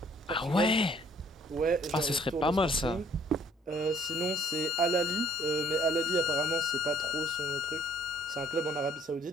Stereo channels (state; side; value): normal; both; correlation 0.60